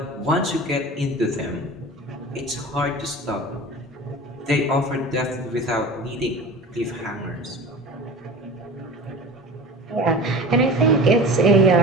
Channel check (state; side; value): normal; both; correlation 0.36